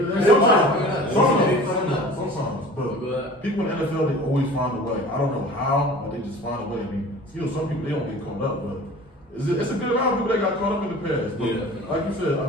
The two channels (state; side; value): normal; both; correlation 0.42